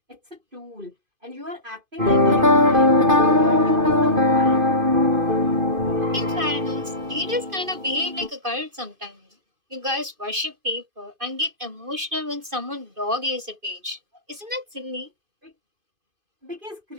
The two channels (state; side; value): late; left; 2.5 ms